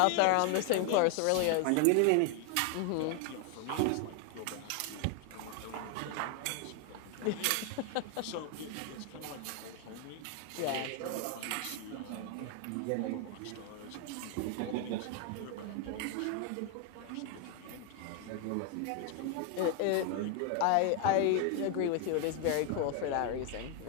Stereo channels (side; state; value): both; different; correlation 0.01